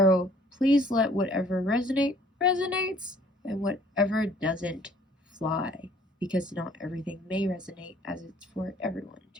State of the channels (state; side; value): normal; both; correlation 0.57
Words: please let whatever resonates, and whatever doesn't fly, because not everything may resonate as it's for everyone